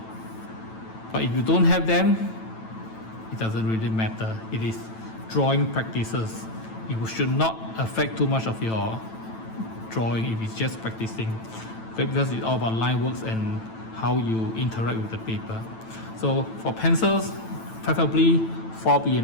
But if you don't have them, it doesn't really matter. It is drawing practices. It should not affect too much of your drawing if it's just practicing. Okay, because it's all about line works and how you interact with the paper. So for pencils, preferably 4B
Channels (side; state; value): right; late; 9.0 ms